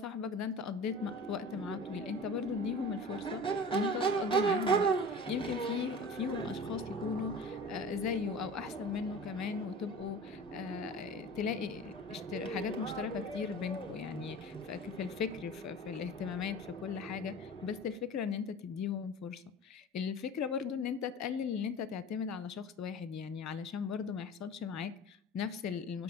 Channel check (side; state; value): both; normal; correlation 0.37